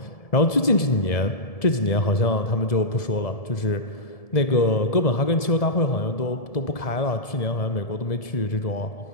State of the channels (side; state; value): right; late; 1.7 ms